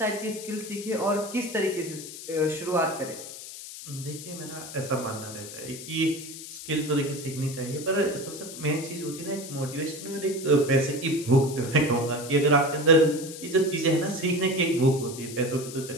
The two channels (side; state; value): left; noise; hiss, 12 dB below the sound